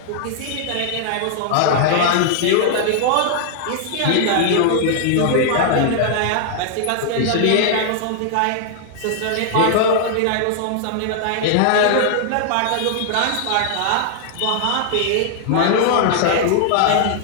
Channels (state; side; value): different; both; correlation -0.01